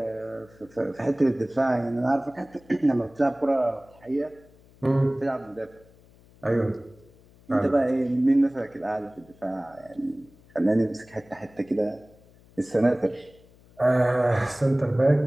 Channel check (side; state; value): left; noise; hum, 27 dB below the sound